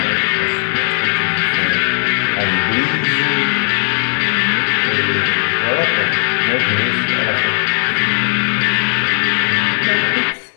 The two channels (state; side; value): silent; right; digital silence